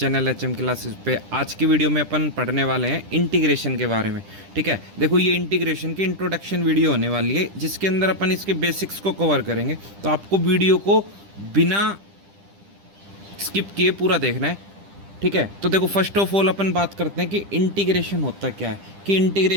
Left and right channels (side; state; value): left; late; 10 ms